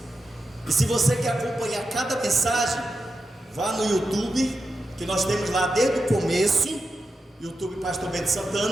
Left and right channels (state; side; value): normal; both; correlation 0.89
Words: E se você quer acompanhar cada mensagem, vá no YouTube, que nós temos lá desde o começo, YouTube Pastor Bento